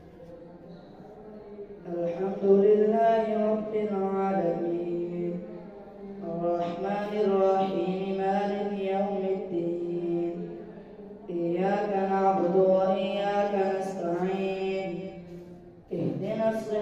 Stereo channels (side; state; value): both; identical; correlation 1.00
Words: الحمد لله رب العالمين الرحمن الرحيم مالك يوم الدين إياك نعبد وإياك نستعين اهدنا